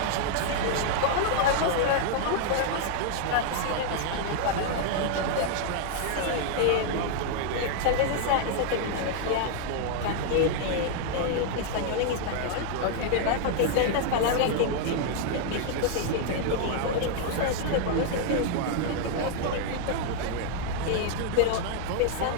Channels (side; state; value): both; different; correlation 0.00